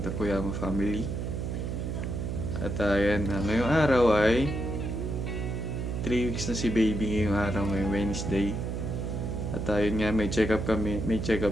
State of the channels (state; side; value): noise; right; hum, 3 dB below the sound